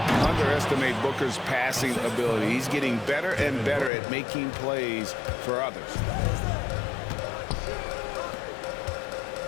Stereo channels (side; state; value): right; drops out; at 3.9 s